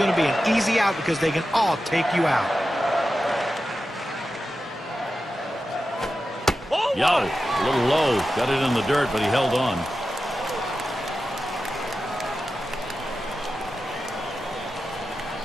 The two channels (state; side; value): normal; both; correlation 0.92